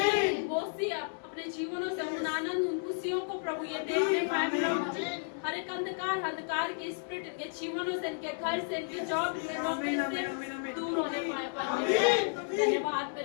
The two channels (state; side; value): silent; right; digital silence